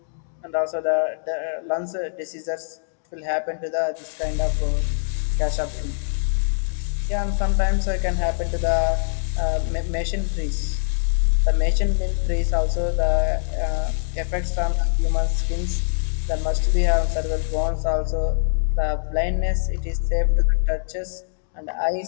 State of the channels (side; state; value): right; silent; 63 dB below the other